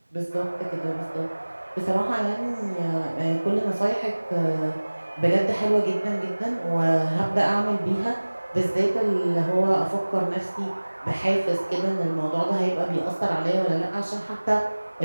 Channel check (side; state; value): both; inverted; correlation -1.00